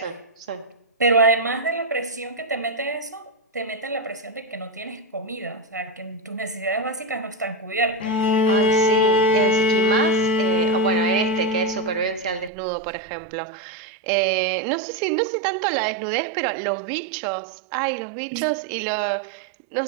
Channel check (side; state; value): left; drops out; at 12.5 s